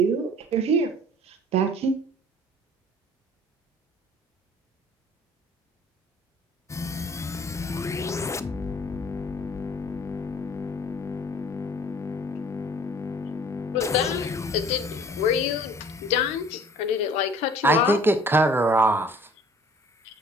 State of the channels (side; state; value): both; normal; correlation 0.52